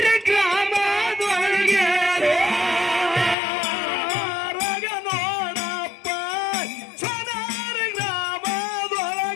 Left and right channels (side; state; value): right; drops out; at 3.4 s